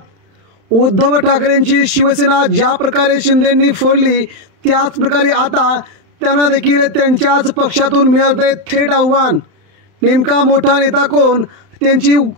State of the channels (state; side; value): late; left; 31 ms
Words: उद्धव ठाकरेंची शिवसेना ज्या प्रकारे शिंदेंनी फोडली त्याच प्रकारे आता त्यांना देखील त्यांच्याच पक्षातून मिळते थेट आव्हान। नेमका मोठा नेता कोण, त्यांची